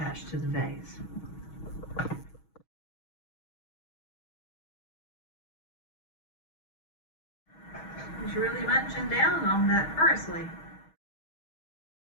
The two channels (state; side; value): late; right; 6.3 ms